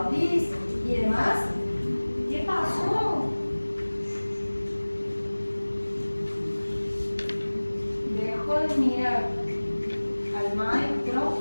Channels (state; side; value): inverted; both; correlation -1.00